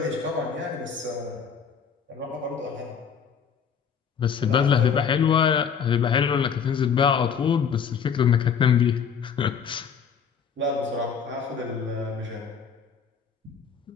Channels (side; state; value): right; quieter; 6.9 dB